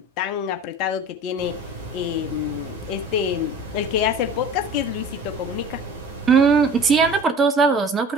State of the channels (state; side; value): normal; both; correlation 0.41